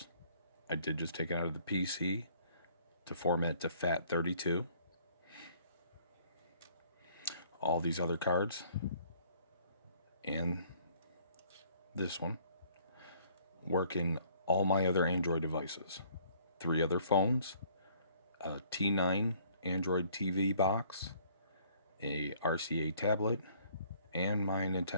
I did just take it out of the PC to format to FAT32. All these other cards and this one work in all my other Android devices. 3 other phones, a T9 Android TV box, a RCA tablet, and my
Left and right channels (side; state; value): both; inverted; correlation -0.59